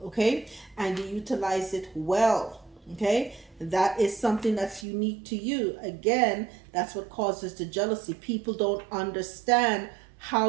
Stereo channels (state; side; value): drops out; left; at 4.9 s